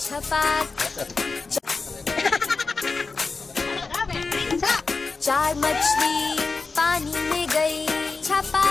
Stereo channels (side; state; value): right; quieter; 4.2 dB